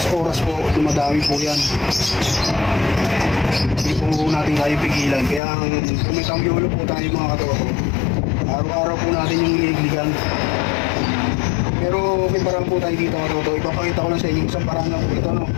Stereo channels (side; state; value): right; drops out; at 5.4 s